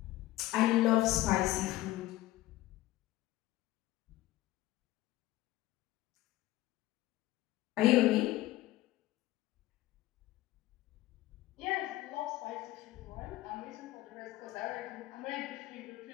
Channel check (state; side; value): quieter; right; 16.6 dB